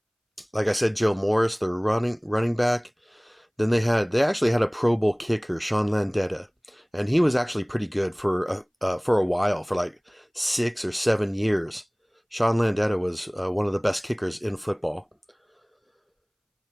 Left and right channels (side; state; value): both; identical; correlation 1.00